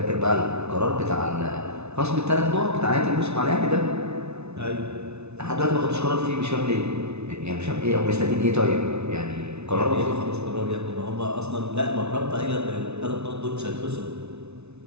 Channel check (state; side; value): late; left; 0.81 ms